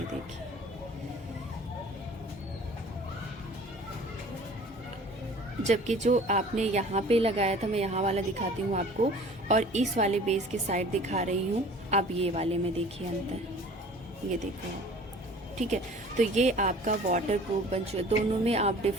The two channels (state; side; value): normal; both; correlation 0.47